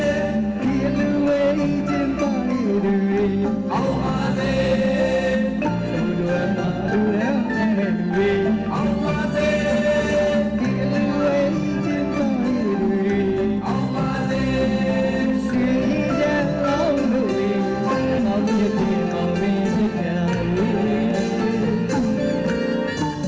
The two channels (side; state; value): both; identical; correlation 1.00